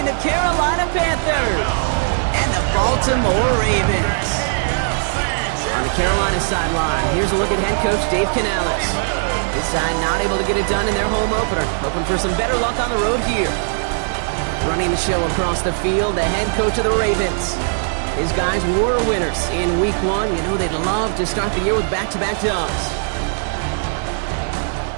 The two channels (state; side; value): silent; left; 66 dB below the other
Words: the Carolina Panthers and the Baltimore Ravens. On the Carolina sideline, here's a look at head coach Dave Canales. This side not able to get it done in their home opener, hoping for some better luck on the road here. Running the show across the field, the head coach of the Ravens. His guys were winners in week 1. You know they'd love to start the year with back-to-back dubs.